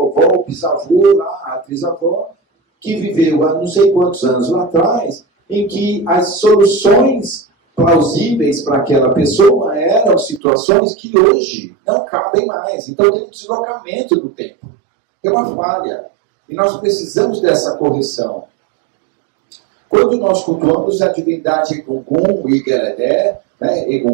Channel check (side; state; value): left; drops out; at 10.4 s